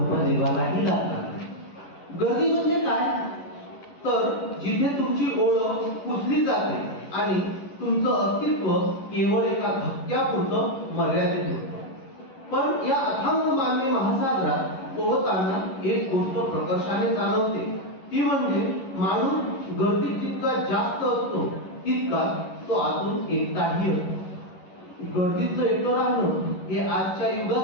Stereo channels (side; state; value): right; late; 11 ms